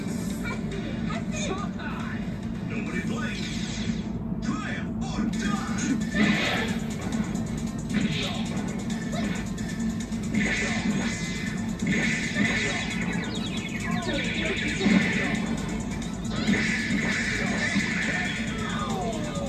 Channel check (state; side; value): identical; both; correlation 1.00